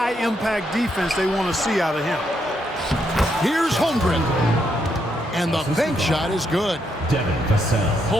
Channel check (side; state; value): both; normal; correlation 0.77